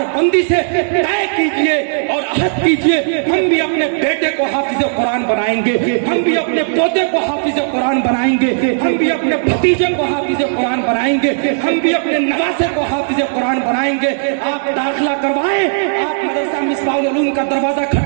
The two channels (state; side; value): silent; left; digital silence